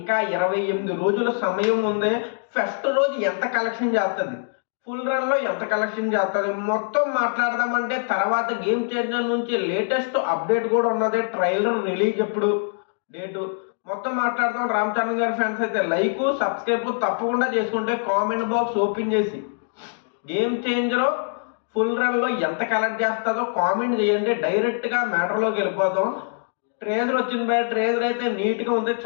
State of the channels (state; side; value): silent; right; digital silence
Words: 28 రోజుల సమయం ఉంది. ఫస్ట్ రోజు ఎంత కలెక్షన్ చేస్తుంది, ఫుల్ రన్ లో ఎంత కలెక్షన్ చేస్తుంది మొత్తం మాట్లాడదామంటే తర్వాత గేమ్ చేంజర్ నుంచి లేటెస్ట్ అప్డేట్ కూడా ఉన్నది. ట్రైలర్ రిలీజ్ ఎప్పుడు, డేటు మొత్తం మాట్లాడదాం. రామ్ చరణ్ గారి ఫ్యాన్స్ అయితే లైక్ సబ్స్క్రైబ్ తప్పకుండా చేసుకుంటే కామెంట్ బాక్స్ ఓపెన్ చేసి గేమ్ చేంజర్ ఫుల్ రన్ లో ఎంత కలెక్ట్ చేస్తుందో కామెంట్ చేయండి. డైరెక్ట్ గా మ్యాటర్ లోకి వెళ్ళిపోదాం. ట్రేజర్ వచ్చింది బయట. ట్రేజర్ అయితే నీట్ గా ఉంది,